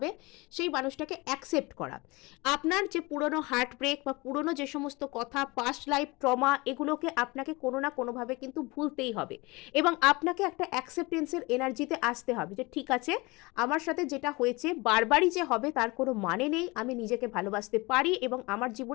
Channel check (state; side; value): quieter; right; 24.2 dB